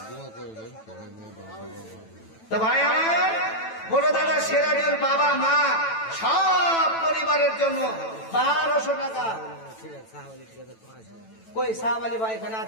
তো ভাই আমার বড় দাদা সিরাজুল বাবা মা সব পরিবারের জন্য 1200 টাকা। কই সাহাব আলী ভাই এখানে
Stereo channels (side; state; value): right; late; 9.1 ms